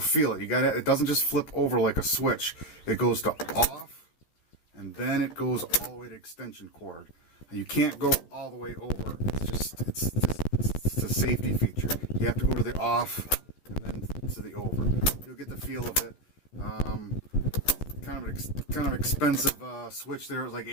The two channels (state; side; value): late; right; 13 ms